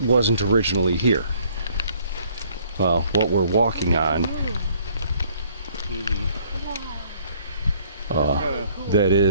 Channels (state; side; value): inverted; both; correlation -0.61